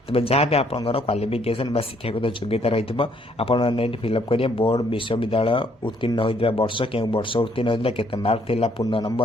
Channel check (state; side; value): normal; both; correlation 0.67